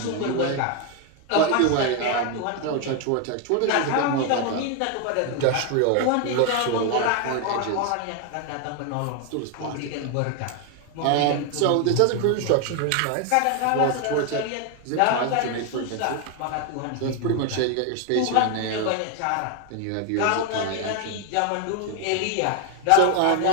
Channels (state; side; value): different; both; correlation 0.01